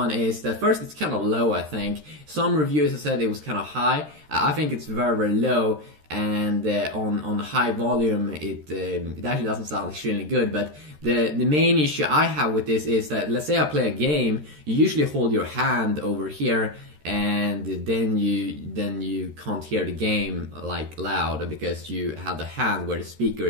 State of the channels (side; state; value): left; late; 13 ms